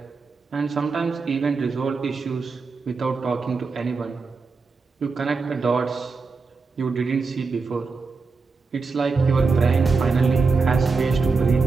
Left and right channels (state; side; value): quieter; left; 4.4 dB